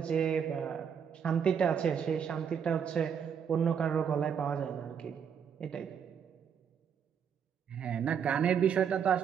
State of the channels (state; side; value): quieter; left; 7.5 dB